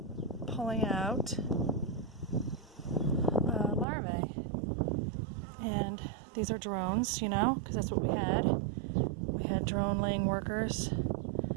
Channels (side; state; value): left; drops out; at 3.9 s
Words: pulling out larvae. And these are drones, because that's what we had. We had drone laying workers.